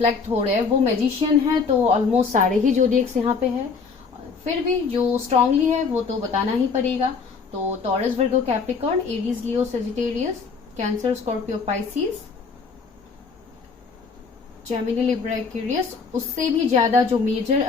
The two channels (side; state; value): right; quieter; 5.1 dB